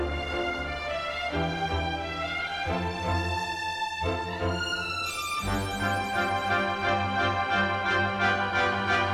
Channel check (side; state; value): both; identical; correlation 1.00